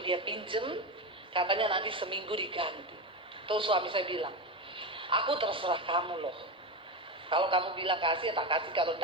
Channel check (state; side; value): normal; both; correlation 0.17